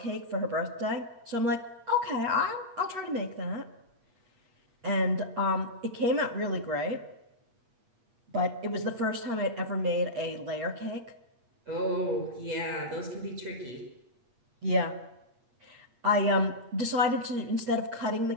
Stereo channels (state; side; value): late; left; 8.4 ms